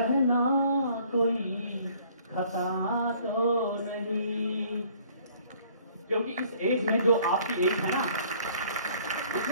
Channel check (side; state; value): both; inverted; correlation -0.58